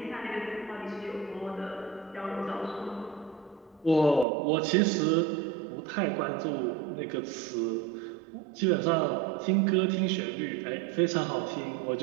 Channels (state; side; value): drops out; left; at 4.2 s